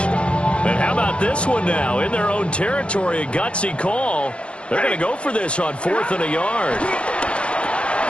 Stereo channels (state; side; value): late; right; 0.059 ms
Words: And how about this one now? In their own territory, a gutsy call. They're going to go for this on 4th and a yard.